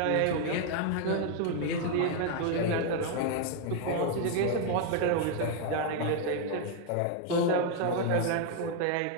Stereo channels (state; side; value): different; both; correlation 0.00